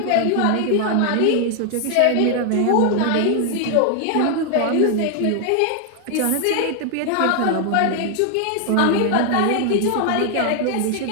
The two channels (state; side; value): different; both; correlation 0.00